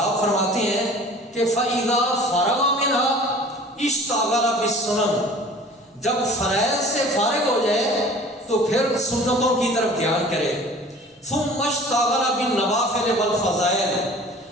فرماتے ہیں کہ فَإِذَا فَرَغَ مِنْهَا اشْتَغَلَ بِالسُّنَنِ، جب فرائض سے فارغ ہو جائے تو پھر سنتوں کی طرف دھیان کرے، ثُمَّ اشْتَغَلَ بِالنَّوَافِلِ وَالْفَضَائِلِ،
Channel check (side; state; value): both; normal; correlation 0.45